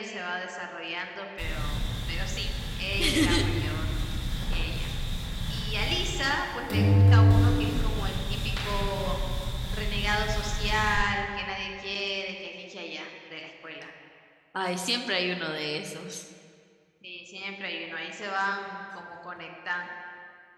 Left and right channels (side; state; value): both; identical; correlation 1.00